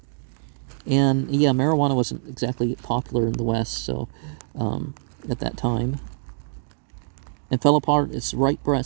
And yeah, marijuana wasn't exactly popular in the West, so at that time. And fell apart its right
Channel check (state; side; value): silent; left; digital silence